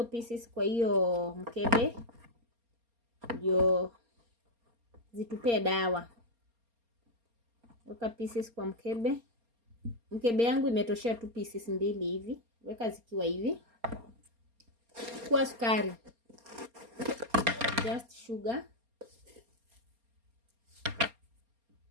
pieces kwa hiyo mkebe ndio zitupe dawa. Weka pieces kwa mkebe. Mkebe yangu imetoshea tu pieces 2 hivi. Weka zikiwa hivi. Chukua sukari. Just sugar.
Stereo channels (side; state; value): left; late; 4.3 ms